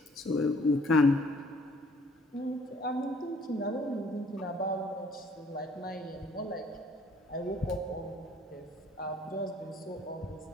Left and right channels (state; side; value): normal; both; correlation 0.59